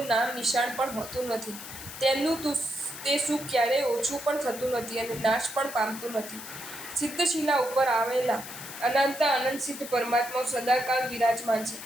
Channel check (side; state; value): left; noise; hiss, 12 dB below the sound